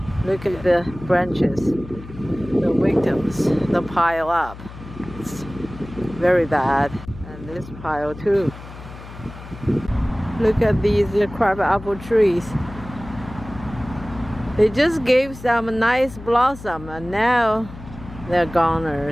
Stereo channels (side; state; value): left; noise; hum, 15 dB below the sound